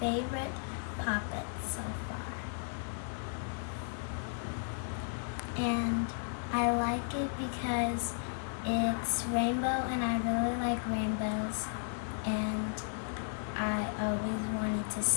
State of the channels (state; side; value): silent; right; 55 dB below the other